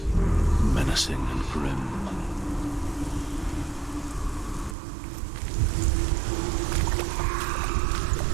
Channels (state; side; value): drops out; left; at 4.8 s